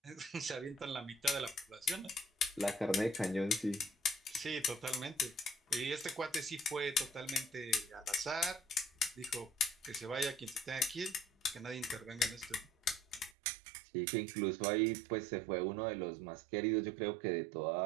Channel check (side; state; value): left; drops out; at 13.4 s